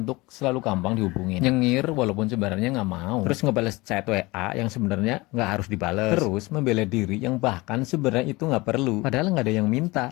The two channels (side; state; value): right; quieter; 22.4 dB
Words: selalu gampang dihubungin. Nyengir walaupun sebenarnya nggak mau. Terus ngebales chat WA yang sebenarnya nggak harus dibales. Terus membela diri yang bahkan sebenarnya itu nggak perlu. Padahal nggak ada yang